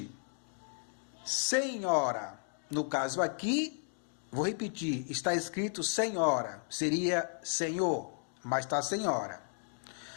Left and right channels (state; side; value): silent; right; 55 dB below the other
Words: Senhora, no caso aqui, vou repetir, está escrito Senhora, seria Senhor, mas está Senhora.